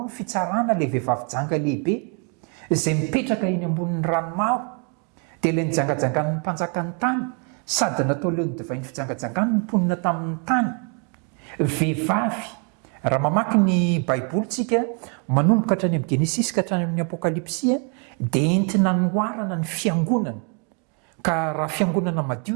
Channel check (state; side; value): quieter; left; 37.9 dB